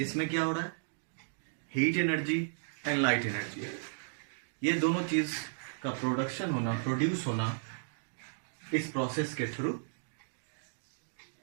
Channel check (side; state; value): left; silent; digital silence